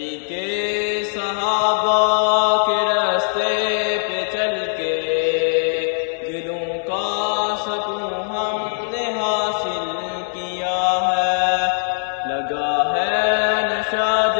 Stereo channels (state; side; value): silent; right; digital silence